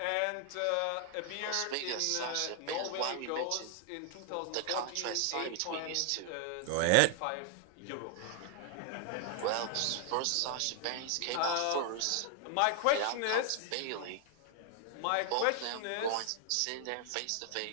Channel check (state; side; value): different; both; correlation 0.00